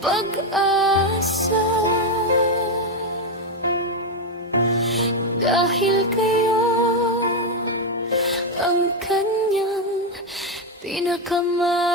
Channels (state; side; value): normal; both; correlation 0.06